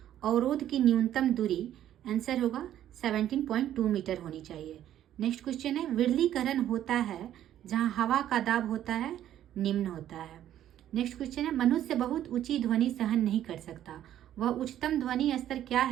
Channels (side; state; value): left; quieter; 11.6 dB